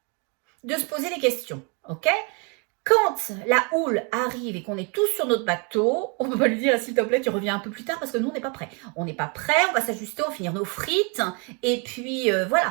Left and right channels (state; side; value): quieter; left; 33.9 dB